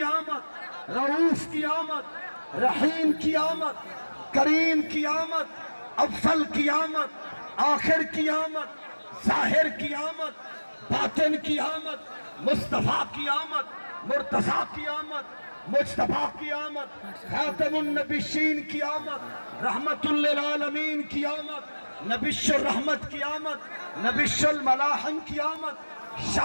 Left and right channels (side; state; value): both; inverted; correlation -1.00